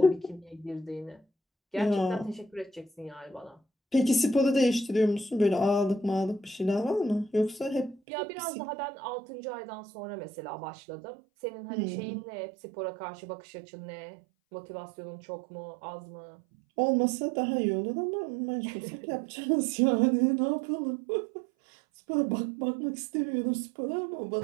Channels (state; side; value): drops out; left; at 8.0 s